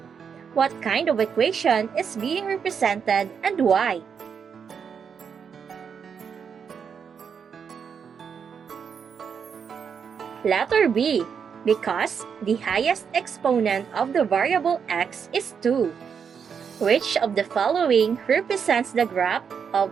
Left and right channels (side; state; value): left; quieter; 6.8 dB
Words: What kind of equation is being represented and why? Letter B, because the highest exponent of the variable x is 2. Which of the following represents the graph